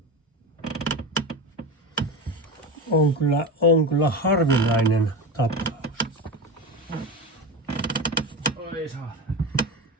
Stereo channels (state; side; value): normal; both; correlation 0.23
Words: On kyllä harvinainen tapaus. Oi saa.